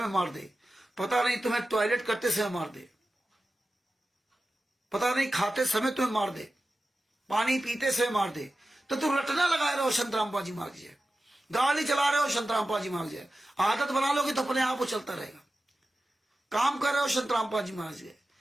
मार दे, पता नहीं तुम्हें टॉयलेट करते समय मार दे, पता नहीं खाते समय तुम्हें मार दे, पानी पीते समय मार दे। तो तुम रटना लगाए रहो संत रामपाल जी महाराज जय। गाड़ी चला रहे हो संत रामपाल जी महाराज जय। आदत बना लोगे तो अपने आप वो चलता रहेगा। काम कर रहे हो संत रामपाल जी महाराज जय।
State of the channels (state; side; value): normal; both; correlation 0.94